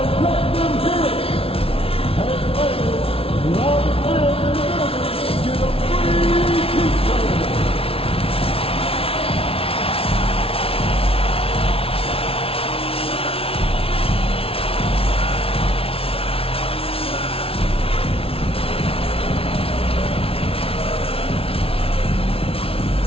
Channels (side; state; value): right; late; 0.27 ms